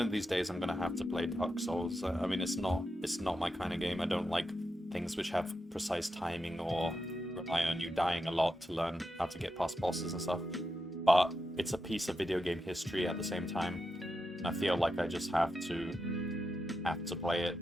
of these days I'm gonna have to play Dark Souls. I mean, it's not my kind of game. I don't like things which have precise timing or rely on you dying a lot to learn how to get past bosses and stuff. But it's a piece of video game history at the same time. And I feel like I just have to play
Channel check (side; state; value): both; normal; correlation 0.87